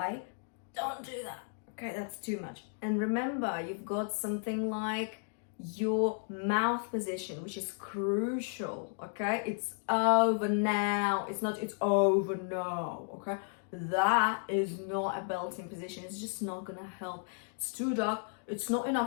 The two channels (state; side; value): silent; right; 55 dB below the other